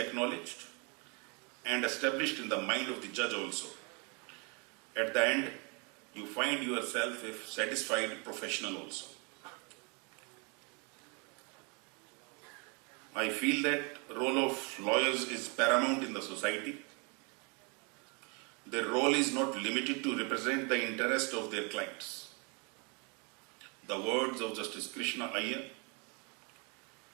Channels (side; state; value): left; quieter; 33.5 dB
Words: and established in the mind of the judge also. At the end, you find yourself a satisfied professional also. I feel that role of lawyers is paramount in the society. Their role is not limited to represent the interest of their clients. The words of Justice Krishna Iyer,